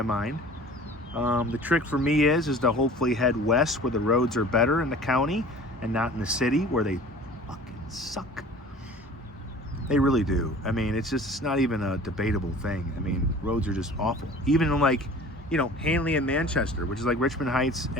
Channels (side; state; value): both; normal; correlation 0.44